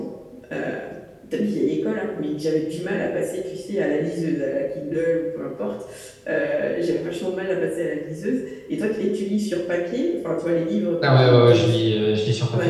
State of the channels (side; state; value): both; identical; correlation 1.00